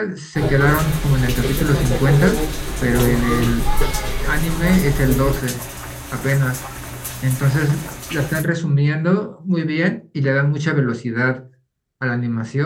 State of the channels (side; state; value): both; identical; correlation 1.00